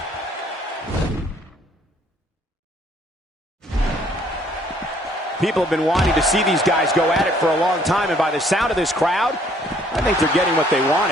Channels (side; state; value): both; normal; correlation 0.62